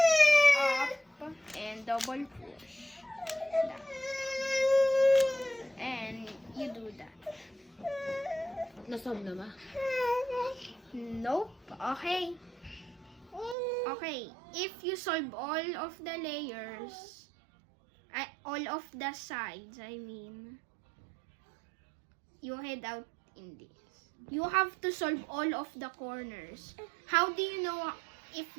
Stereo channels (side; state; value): left; drops out; at 13.6 s